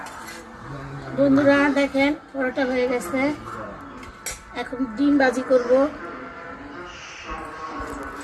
বন্ধুরা দেখেন পরোটা হয়ে গেছে, এখন ডিম ভাজি করব।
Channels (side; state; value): both; identical; correlation 1.00